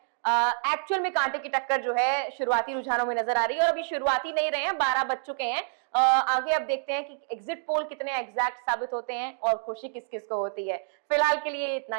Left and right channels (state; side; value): silent; left; digital silence